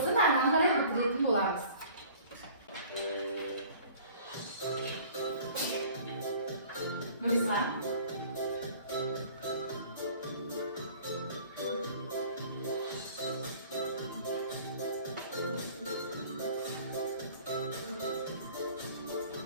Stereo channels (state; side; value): inverted; both; correlation -0.48